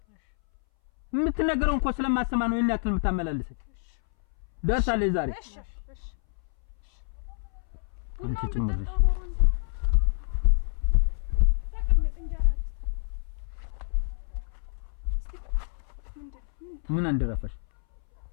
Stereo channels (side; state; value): right; silent; 59 dB below the other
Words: የምትነገረው እንኳን ስለማሰማ ነው እናክል የምታመላልሰኝ ደርሳለች ዛሬ እሺ ቡናውን ብትጠጣው ኖሮ እንዴ ተቀመጥ እንጀራ ልስታ እስቲ ምን አንደረፈሽ